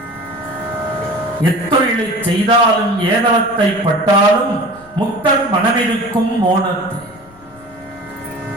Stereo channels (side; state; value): left; noise; rumble, 25 dB below the sound